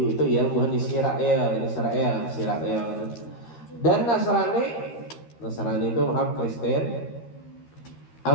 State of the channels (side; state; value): right; late; 13 ms